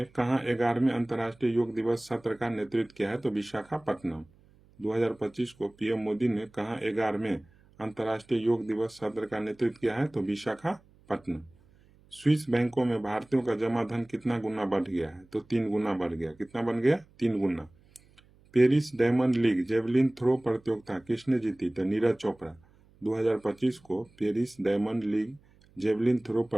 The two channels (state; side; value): noise; right; hum, 29 dB below the sound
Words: कहाँ 11वें अंतर्राष्ट्रीय योग दिवस सत्र का नेतृत्व किया है? तो विशाखापट्टनम। 2025 को PM मोदी ने कहाँ 11वें अंतर्राष्ट्रीय योग दिवस सत्र का नेतृत्व किया है? तो विशाखापट्टनम। स्विस बैंकों में भारतीयों का जमा धन कितना गुना बढ़ गया है? तो 3 गुना बढ़ गया। कितना बन गया? 3 गुना। Paris Diamond League javelin throw प्रतियोगिता किसने जीती? तो नीरज चोपड़ा। 2025 को Paris Diamond League javelin throw